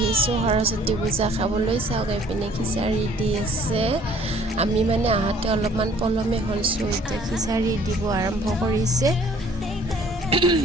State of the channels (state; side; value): normal; both; correlation 0.56